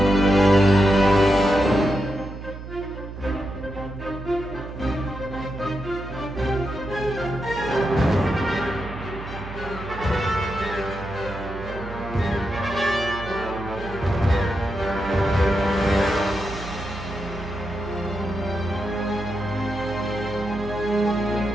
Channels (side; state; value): right; noise; hum, 11 dB below the sound